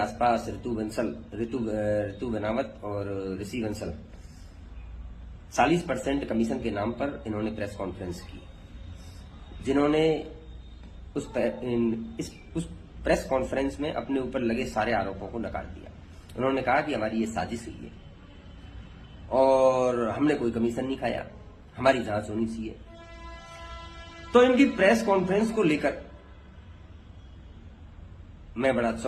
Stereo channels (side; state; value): both; identical; correlation 1.00